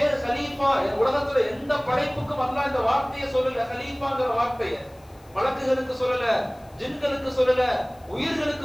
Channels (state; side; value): noise; left; hiss, 29 dB below the sound